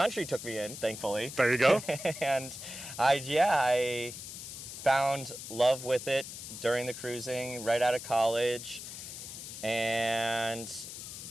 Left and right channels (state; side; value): noise; left; hiss, 10 dB below the sound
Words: took me in, thankfully. There you go. And I found love with it during the cruising, right out of college, and